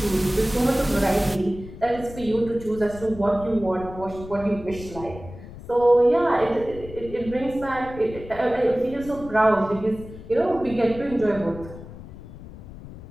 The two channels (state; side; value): noise; left; rumble, 15 dB below the sound